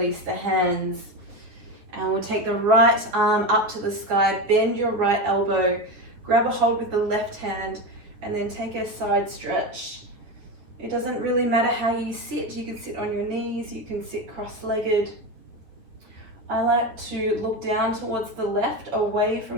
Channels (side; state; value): left; late; 9.9 ms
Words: the hands, and we'll take the right arm up to the sky. Bend your right elbow, grab a hold with the left hand, and then take a side stretch. It doesn't really matter how you sit. You can sit on your knees, you can sit cross-legged. I like to look down towards the left, away